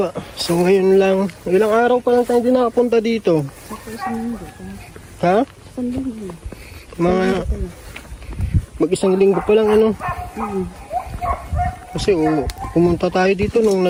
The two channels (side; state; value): both; identical; correlation 1.00